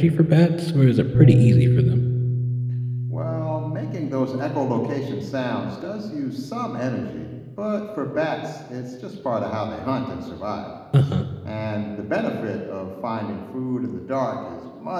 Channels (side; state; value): both; identical; correlation 1.00